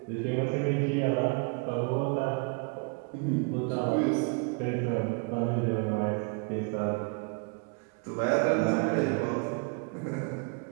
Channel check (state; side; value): quieter; left; 34.2 dB